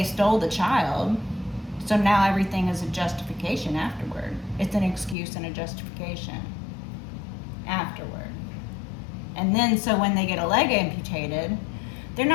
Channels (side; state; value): right; drops out; at 5.2 s